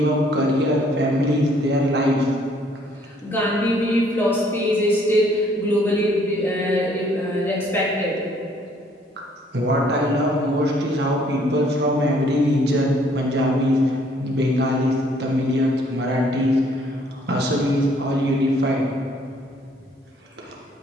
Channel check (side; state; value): both; normal; correlation 0.63